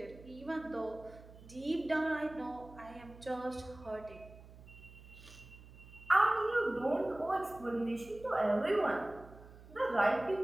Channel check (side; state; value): right; noise; hum, 19 dB below the sound